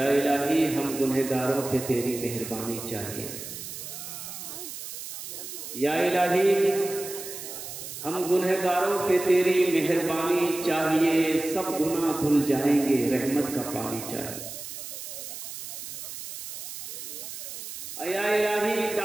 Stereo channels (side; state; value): right; noise; hiss, 10 dB below the sound